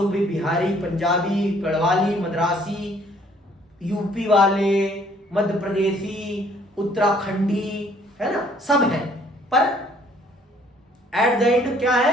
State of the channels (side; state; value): both; normal; correlation 0.61